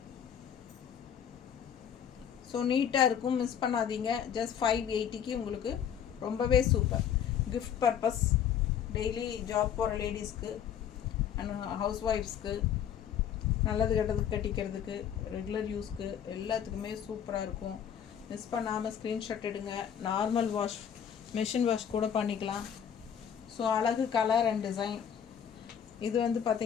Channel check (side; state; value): right; quieter; 8.8 dB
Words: ஸோ நீட்டாக இருக்கும், மிஸ் பண்ணாதீங்க. ஜஸ்ட் 580க்கு உங்களுக்கு ரொம்பவே super. Gift purpose, daily job போகிற லேடிஸ்க்கு அண்ட் ஹவுஸ் ஒய்ஃப்ஸ்க்கு, நல்லது கெட்டதுக்கு கட்டிக்கிறதுக்கு, ரெகுலர் யூஸ்க்கு எல்லாத்துக்குமே சூப்பராக இருக்கும். மிஸ் பண்ணாமல் ஸ்க்ரீன்ஷாட் எடுங்க. நார்மல் வாஷ், மெஷின் வாஷ் கூட பண்ணிக்கலாம். ஸோ அழகு கலர் அண்ட் டிசைன். இது வந்து